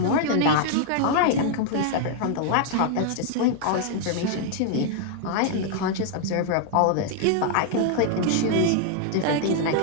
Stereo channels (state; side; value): different; both; correlation 0.00